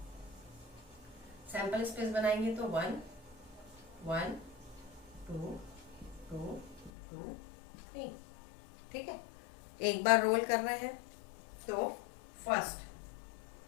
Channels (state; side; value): drops out; right; at 6.9 s